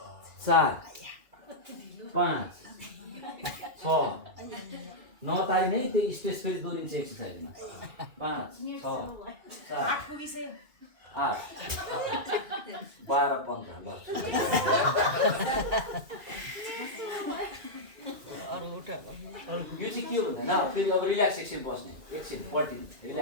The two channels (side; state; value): left; late; 2.4 ms